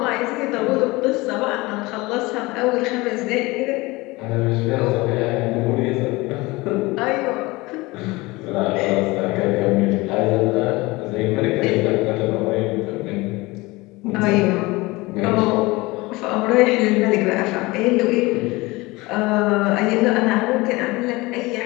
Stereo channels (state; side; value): quieter; right; 22.2 dB